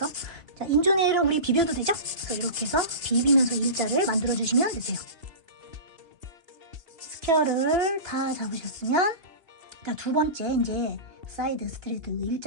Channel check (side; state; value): left; late; 2.9 ms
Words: 자, 인조네일은 우리 비벼도 되죠? 그래서 이렇게 해서 비비면서 일자를 만들어 주시면 되세요. 스퀘어를 다 잡으셨으면, 자, 두 번째 이제 사이드 스트레이트